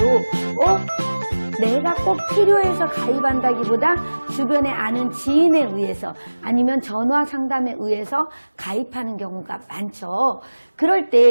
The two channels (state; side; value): inverted; both; correlation -1.00